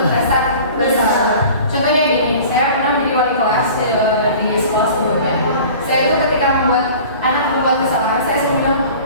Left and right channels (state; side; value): inverted; both; correlation -0.43